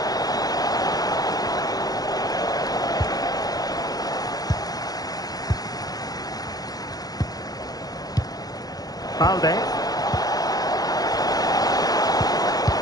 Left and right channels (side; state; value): right; late; 0.19 ms